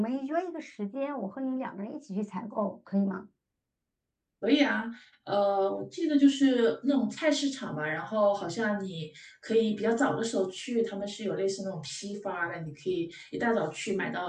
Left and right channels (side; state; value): both; identical; correlation 1.00